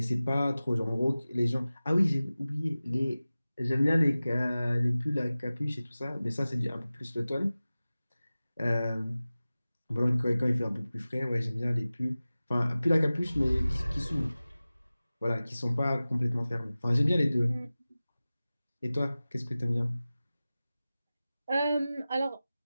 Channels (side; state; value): both; inverted; correlation -0.97